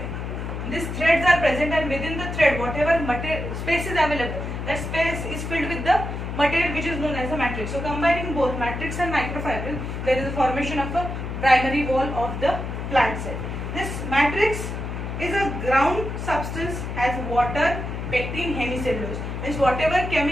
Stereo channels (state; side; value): noise; left; hum, 5 dB below the sound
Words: these threads are present, and within the thread whatever space is available, that space is filled with the material which is known as a matrix. So combining both matrix and microfibril, there is a formation of a primary wall of the plant cell. This matrix is a ground substance, has water, pectin, hemicellulose. Means whatever